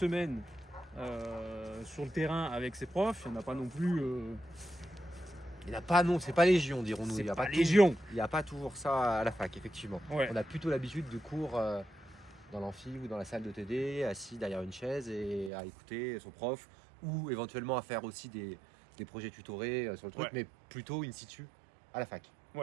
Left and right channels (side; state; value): left; drops out; at 15.5 s